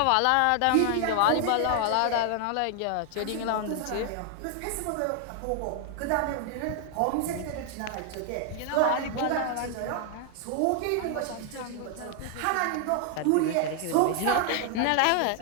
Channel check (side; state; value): both; different; correlation 0.00